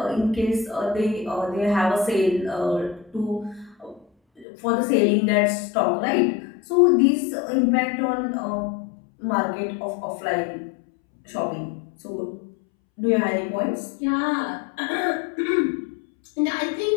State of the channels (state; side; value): drops out; right; at 4.5 s